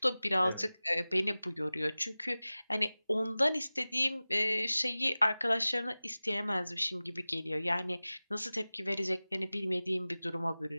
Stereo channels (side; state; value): both; inverted; correlation -0.97